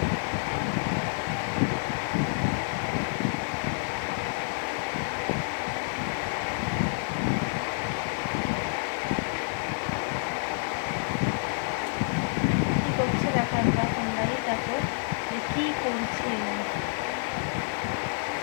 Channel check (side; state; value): right; silent; 59 dB below the other